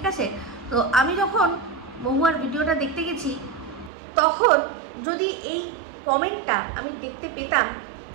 আছে? তো আমি যখন মহুয়ার ভিডিওটা দেখতে গেছি, তখন যদি এই কমেন্টটা আমি দেখতে পেতাম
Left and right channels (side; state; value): left; drops out; at 3.9 s